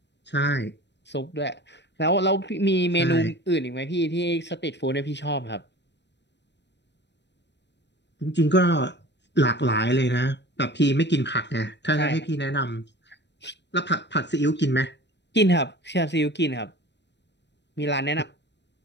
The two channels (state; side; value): late; right; 0.51 ms